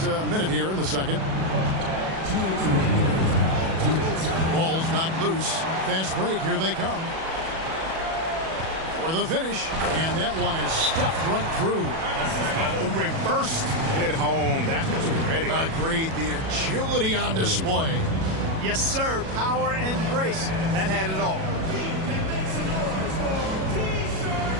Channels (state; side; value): late; left; 37 ms